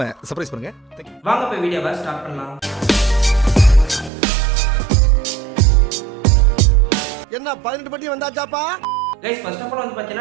சர்ப்ரைஸ் பண்ணுங்க. வாங்க போய் வீடியோவை ஸ்டார்ட் பண்ணலாம். என்ன 18 பட்டி வந்தாச்சாப்பா? கைஸ், ஃபர்ஸ்ட் ஆஃப் ஆல் வந்து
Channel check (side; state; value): left; drops out; at 4.1 s